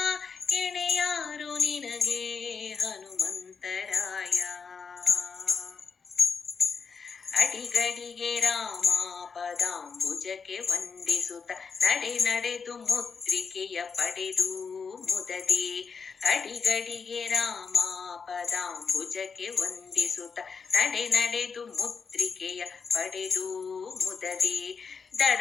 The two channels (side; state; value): right; quieter; 5.6 dB